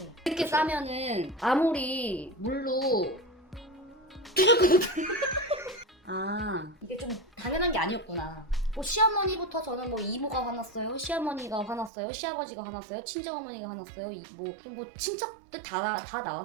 이렇게 싸면은 아무리 물로 아 이게 좀 당연한 게 아니었구나. 뭐 시어머니부터 저는 뭐 이모가 화났어요, 시어머니가 화났어요, 시아버지가 화났어요, 친정어머니가 화났어요, 뭐 친척들 다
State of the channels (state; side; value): drops out; left; at 11.9 s